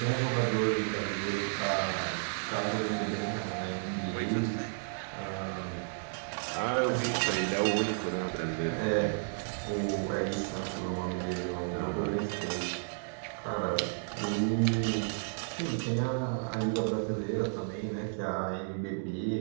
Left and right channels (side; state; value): left; silent; digital silence